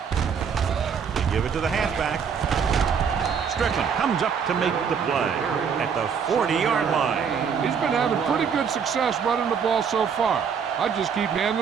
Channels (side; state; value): left; quieter; 6.8 dB